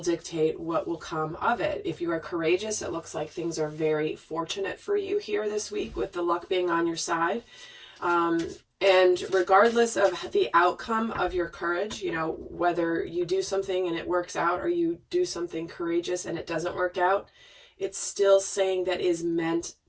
dictate what will come of it. If you are courageous, it looks like things are very fortunate for you here this week with the luck being on your side. And regardless of the outcome of your courage, whether you do something and it works out or you do something courageous and it doesn't work out, it's still saying that is meant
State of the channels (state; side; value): identical; both; correlation 1.00